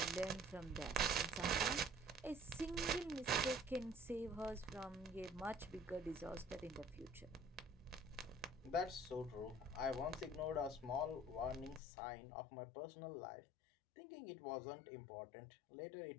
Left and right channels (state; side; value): drops out; right; at 11.8 s